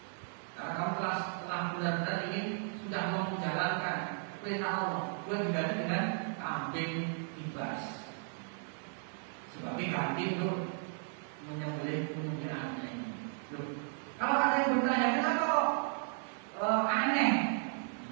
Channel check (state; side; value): silent; left; 54 dB below the other